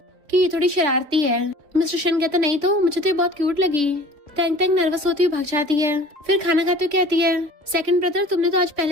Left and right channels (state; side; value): late; left; 3.6 ms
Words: कि ये थोड़ी शरारती है। मिस्टर शैन कहता नहीं तो, मुझे तो ये बहुत क्यूट लगी। तेंग तेंग नर्वस होती हुई भाग जाती है। फिर खाना खाते हुए कहती है सेकंड ब्रदर, तुमने तो आज